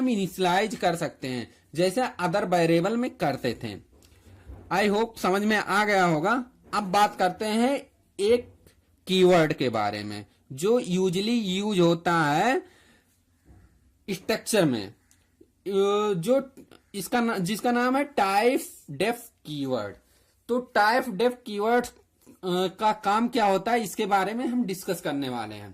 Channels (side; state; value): both; identical; correlation 1.00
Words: इनिशियलाइज कर सकते हैं जैसे अदर वेरिएबल में करते थे। आई होप समझ में आ गया होगा। अब बात करते हैं एक कीवर्ड के बारे में जो यूजली यूज होता है स्ट्रक्चर में, जो जिसका नाम है टाइप डेफ कीवर्ड। तो टाइप डेफ कीवर्ड का काम क्या होता है इसके बारे में हम डिस्कस करने वाले